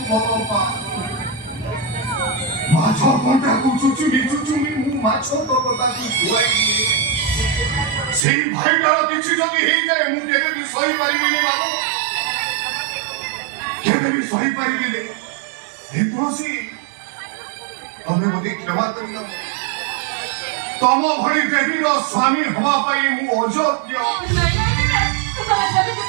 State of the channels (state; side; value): drops out; left; at 8.2 s